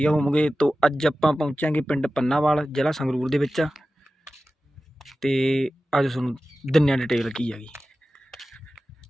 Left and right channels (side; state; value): both; normal; correlation 0.95